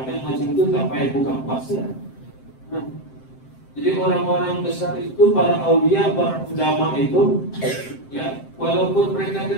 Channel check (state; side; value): late; right; 7.7 ms